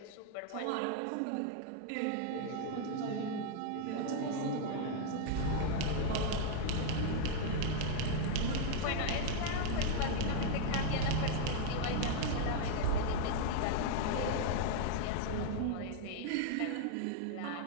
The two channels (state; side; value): different; both; correlation 0.00